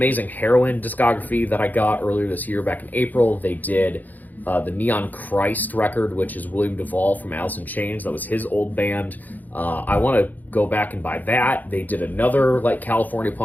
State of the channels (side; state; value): right; late; 0.083 ms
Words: Heroin discography that I got earlier this year back in April. They did the Neon Christ record, which is William Duvall from Alice in Chains. That was his old band. I want to go back and buy that. They did another like California